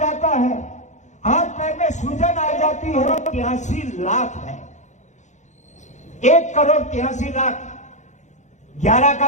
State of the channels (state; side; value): late; right; 0.35 ms